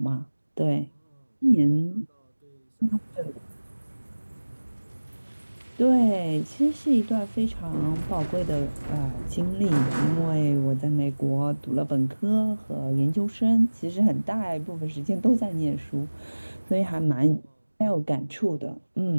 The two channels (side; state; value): both; inverted; correlation -1.00